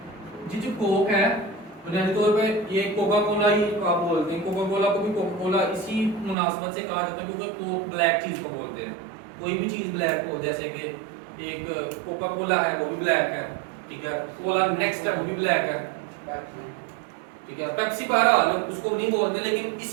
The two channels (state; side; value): drops out; left; at 6.4 s